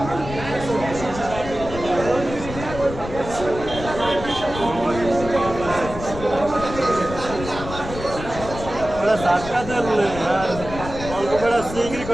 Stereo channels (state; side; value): noise; left; rumble, 10 dB below the sound